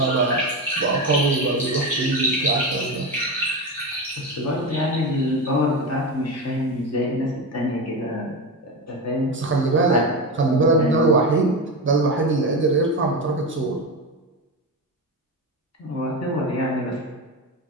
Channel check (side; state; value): both; normal; correlation 0.18